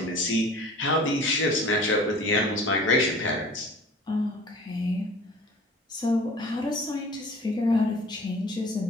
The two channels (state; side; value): normal; both; correlation 0.45